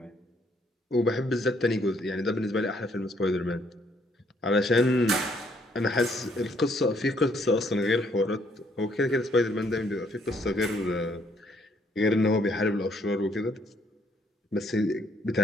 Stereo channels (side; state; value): both; normal; correlation 0.68